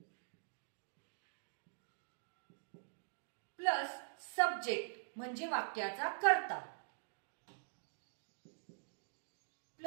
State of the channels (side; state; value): left; silent; digital silence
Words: प्लस सब्जेक्ट म्हणजे वाक्याचा कर्ता,